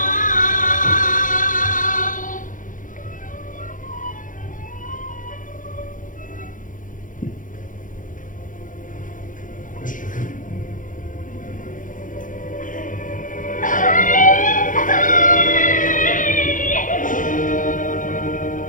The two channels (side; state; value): right; late; 0.38 ms